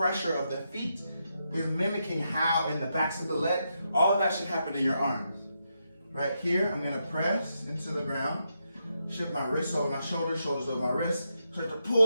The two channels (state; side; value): inverted; both; correlation -0.83